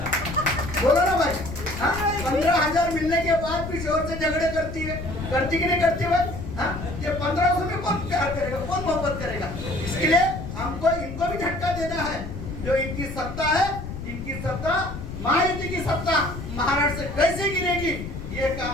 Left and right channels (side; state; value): left; noise; rumble, 8 dB below the sound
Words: बोलो ना भाई, 15,000 मिलने के बाद भी शोहर से झगड़े करती है, करती कि नहीं करती भाई? ये 1500 में कौन प्यार करेगा, कौन मोहब्बत करेगा? इसके लिए हमको इनको भी झटका देना है। जो इनकी सत्ता है, इनकी सत्ता महायुति की सत्ता महाराष्ट्र से कैसे गिरेगी, ये